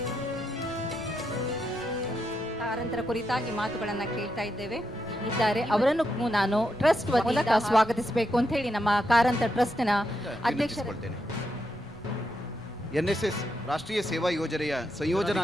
ಕಾರಂತರ ಕುರಿತಾಗಿ ಮಾತುಗಳನ್ನು ಕೇಳ್ತಾ ಇದ್ದಾರೆ. ಅವರನ್ನು ನಾನು ಟ್ರಸ್ಟ್ ಮೂಲಕ ಸ್ವಾಗತಿಸಬೇಕು ಅಂತ ಹೇಳಿ ನಮ್ಮ ಕಾರಂತ ಟ್ರಸ್ಟ್ನ ಅಧ್ಯಕ್ಷರು. NSS ರಾಷ್ಟ್ರೀಯ ಸೇವಾ ಯೋಜನೆಯ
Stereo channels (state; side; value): noise; left; rumble, 22 dB below the sound